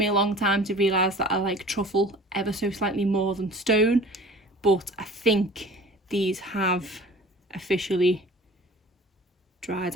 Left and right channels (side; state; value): both; normal; correlation 0.44